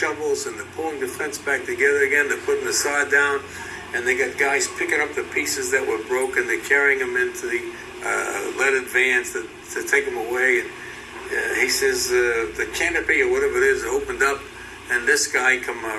and they're pulling the fence back together again. They're putting the sod down, and they got guys picking up the pieces that were broken. They're carrying them into the leaded vans to take them away. And he says the canopy or whatever it is opened up, and this guy come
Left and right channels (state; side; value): identical; both; correlation 1.00